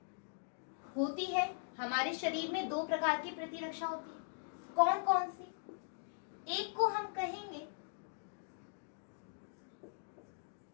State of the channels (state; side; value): silent; right; digital silence